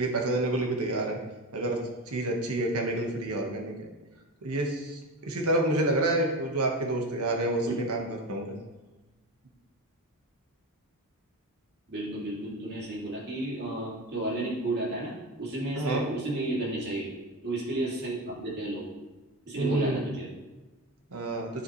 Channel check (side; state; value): both; normal; correlation 0.23